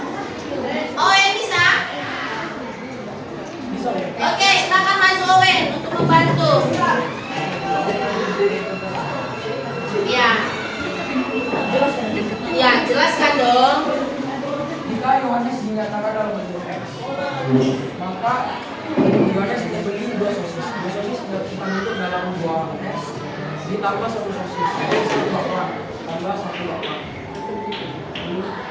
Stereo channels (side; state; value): both; identical; correlation 1.00